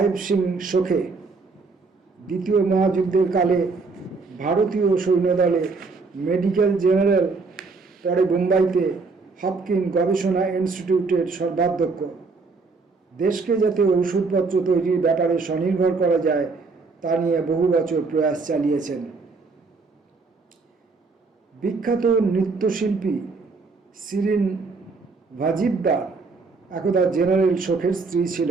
সিং সোখে। দ্বিতীয় মহাযুদ্ধের কালে ভারতীয় সৈন্যদলে মেডিকেল জেনারেল, পরে বোম্বাইতে হপকিন গবেষণা ইনস্টিটিউটের সর্বাধ্যক্ষ। দেশকে যাতে ওষুধপত্র তৈরির ব্যাপারে স্বনির্ভর করা যায় তা নিয়ে বহু বছর প্রয়াস চালিয়েছেন। বিখ্যাত নৃত্যশিল্পী শিরিন ভাজিদ্দার একদা জেনারেল শোকের স্ত্রী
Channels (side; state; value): left; quieter; 4.2 dB